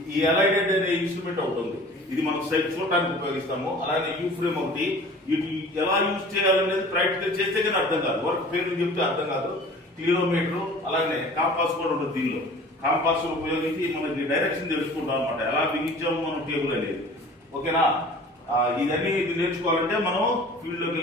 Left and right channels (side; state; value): both; normal; correlation 0.45